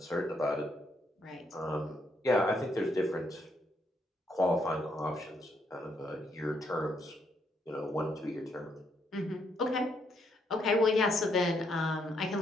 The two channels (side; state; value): both; normal; correlation 0.75